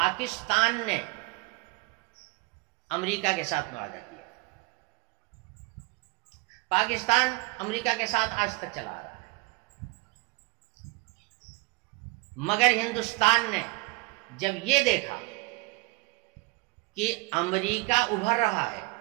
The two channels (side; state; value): left; quieter; 25.3 dB